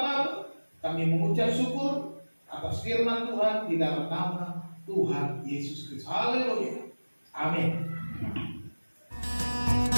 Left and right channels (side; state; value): both; inverted; correlation -1.00